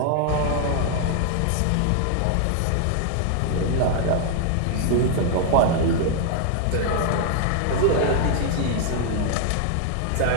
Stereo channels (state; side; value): different; both; correlation 0.00